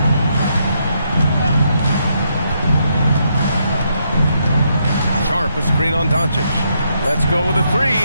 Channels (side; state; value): both; inverted; correlation -0.77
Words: Sharp, a screen on Doncic. Let's go with a 3.